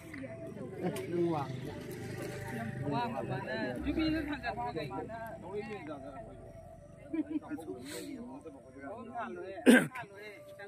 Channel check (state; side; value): identical; both; correlation 1.00